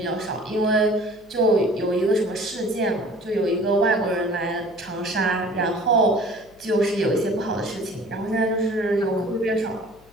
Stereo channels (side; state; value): left; noise; hum, 28 dB below the sound